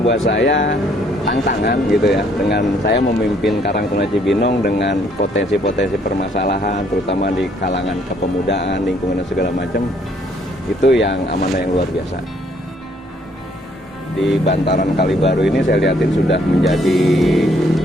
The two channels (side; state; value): both; normal; correlation 0.66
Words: buat saya tantangan gitu ya, dengan saya memimpin Karang Taruna Cibinong dengan potensi-potensi permasalahan, terutama di kalangan kepemudaan, lingkungan dan segala macam. Itu yang amanah yang luar biasa. Di bantaran Kali Baru ini saya lihatin sudah menjadi